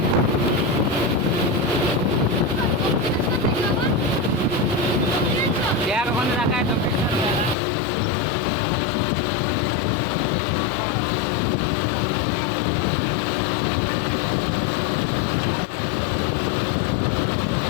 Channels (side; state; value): right; drops out; at 7.6 s